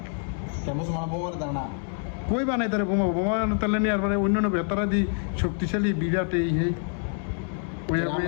মুসলমান বোমা না কই বানাই তারা বোমা বোমা তাহলে নিয়ে আর মানে অন্যান্য ভেতরা দি শক্তিশালী বিরাট এই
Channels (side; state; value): right; silent; 57 dB below the other